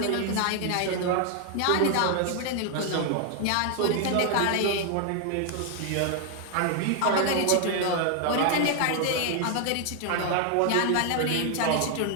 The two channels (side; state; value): both; different; correlation 0.00